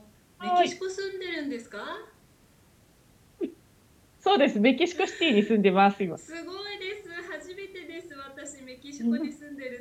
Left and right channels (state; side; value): identical; both; correlation 1.00